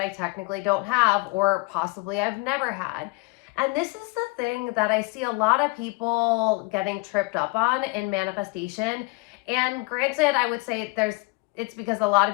technically don't have or possibly I've never had? And this is the thing that I see a lot of people getting tripped up on in manifestation. And granted, I would say it's because a lot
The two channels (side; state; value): right; quieter; 27.4 dB